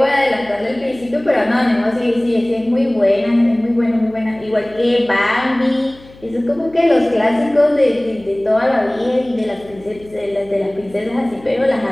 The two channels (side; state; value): left; noise; hum, 23 dB below the sound